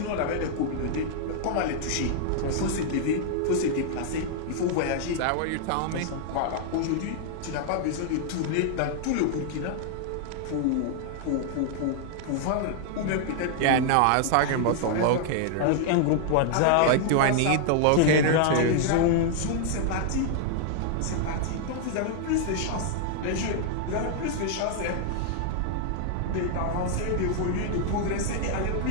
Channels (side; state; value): both; different; correlation 0.00